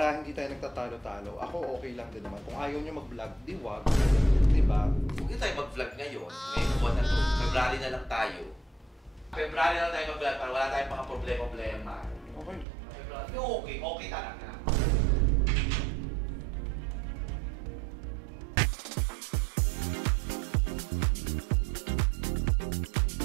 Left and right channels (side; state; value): left; drops out; at 12.7 s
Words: hindi tayo nagtatalo-talo. Ako okay lang din naman. Kung ayaw nyo mag-vlog, di wag. Diba? Huwag tayo mag-vlog ngayon. Ngayong buwan na to. February na lang tayo. February na lang tayo mag-vlog para wala tayong mga problema. Okay. February. Okay. Okay talaga.